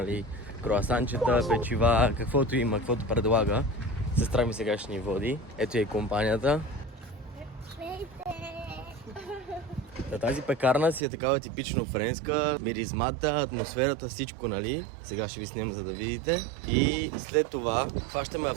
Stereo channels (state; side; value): drops out; left; at 11.0 s